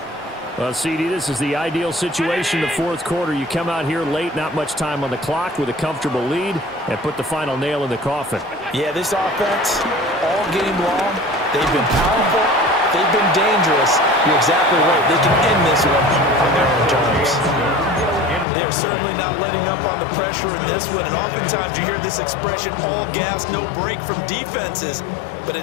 Well, CD, this is the ideal situation in the fourth quarter. You come out here late, not much time on the clock with a comfortable lead, and put the final nail in the coffin. Yeah, this offense, all game long, they've been powerful, they've been dangerous. You're exactly right. They can end this one on their own terms. They're certainly not letting up on the pressure in this one, and oftentimes you hear this expression, all gas, no break from defenses. But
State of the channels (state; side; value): drops out; right; at 18.4 s